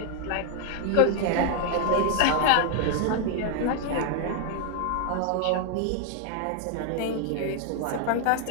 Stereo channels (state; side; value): different; both; correlation 0.00